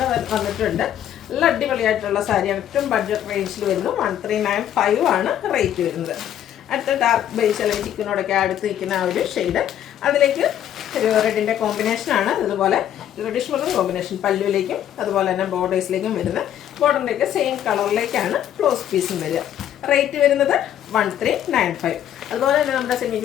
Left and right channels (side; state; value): right; quieter; 10.8 dB